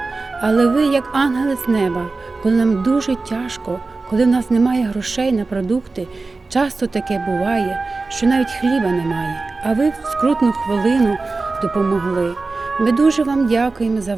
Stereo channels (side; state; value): left; quieter; 3.7 dB